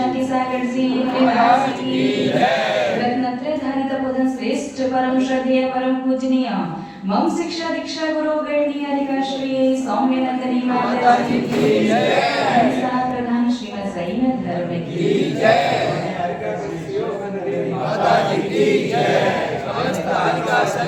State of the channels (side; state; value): both; identical; correlation 1.00